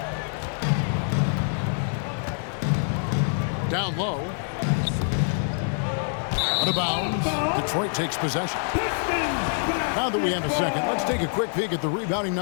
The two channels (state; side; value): silent; right; 61 dB below the other